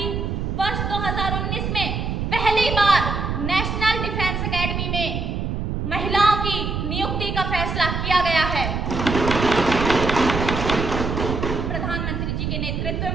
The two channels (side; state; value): right; noise; rumble, 2 dB below the sound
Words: वर्ष 2019 में पहली बार नेशनल डिफेंस एकेडमी में महिलाओं की नियुक्ति का फैसला किया गया है। प्रधानमंत्री जी के नेतृत्व